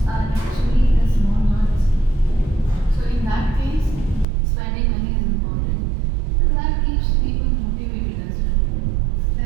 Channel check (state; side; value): drops out; left; at 4.2 s